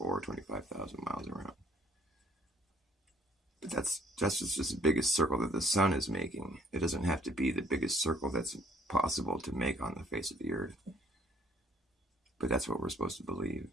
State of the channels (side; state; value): both; normal; correlation 0.60